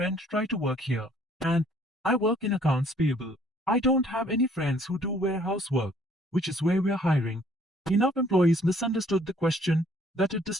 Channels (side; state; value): both; normal; correlation 0.60